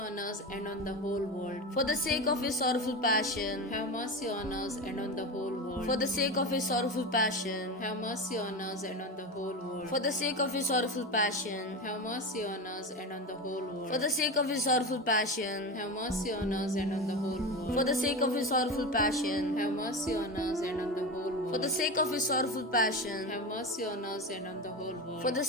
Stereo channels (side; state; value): both; normal; correlation 0.22